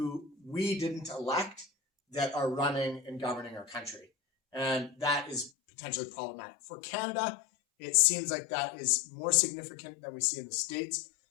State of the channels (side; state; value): right; drops out; at 5.5 s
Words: we didn't elect that are running and governing our country. And that is potentially problematic. For Canada, it seems like that is more significant than we see in the States